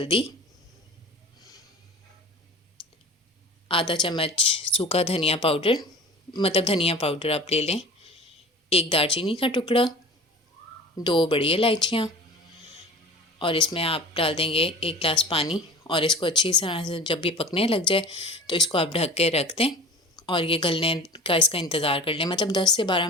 आधा चम्मच सूखा धनिया पाउडर, मतलब धनिया पाउडर आप ले लें, 1 दालचीनी का टुकड़ा, 2 बड़ी इलायचियाँ, और इसमें आप डाल देंगे 1 गिलास पानी। और इसको अच्छी तरह से जब ये पकने लग जाए तो इसको आप ढक के रख दें और ये गलने का इसका इंतज़ार कर लें। मतलब 10 से 12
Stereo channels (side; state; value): both; normal; correlation 0.38